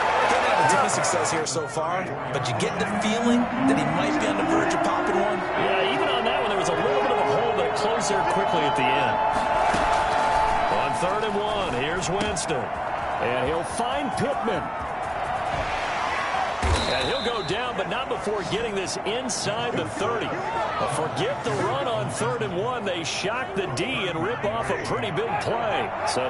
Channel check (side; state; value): both; identical; correlation 1.00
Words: Didn't have a ton of success here so far, but you get the feeling that he might be on the verge of popping one. Yeah, even on that one, there was a little bit of a hole, but it closed there quickly at the end. On 3rd and 1, here's Winston. And he'll find Pittman. And he'll go down, but not before getting this inside the 30. But forget the run on 3rd and 1. They shock the D and rip off a pretty big play. So